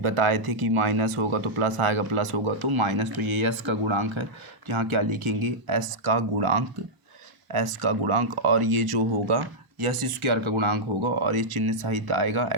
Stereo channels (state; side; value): late; left; 1.0 ms